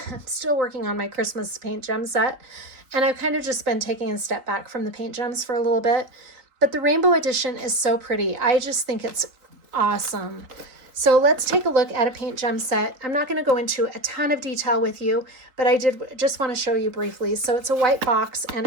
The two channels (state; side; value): late; left; 3.8 ms